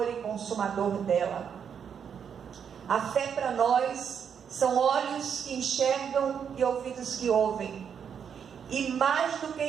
e consumador dela. A fé para nós são olhos que enxergam e ouvidos que ouvem. E mais do que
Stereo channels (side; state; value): left; quieter; 7.5 dB